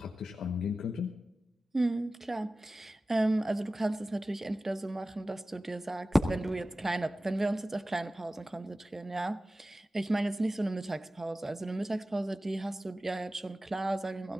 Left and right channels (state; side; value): normal; both; correlation 0.95